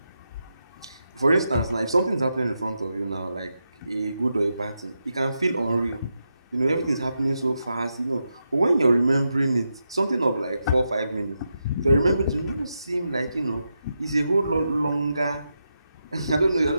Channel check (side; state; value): both; inverted; correlation -0.86